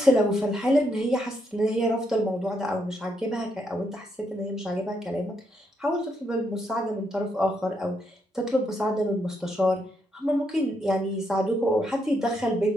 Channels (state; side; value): normal; both; correlation 0.78